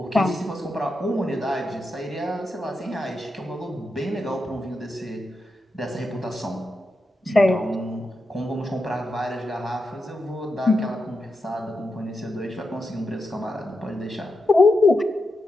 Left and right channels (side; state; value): both; normal; correlation 0.87